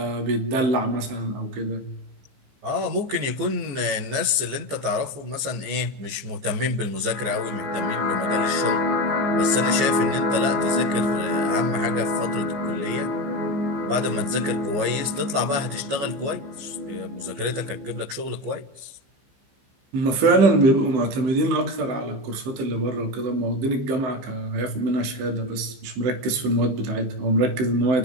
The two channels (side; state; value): left; late; 15 ms